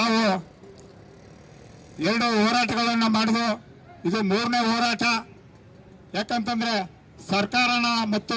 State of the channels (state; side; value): identical; both; correlation 1.00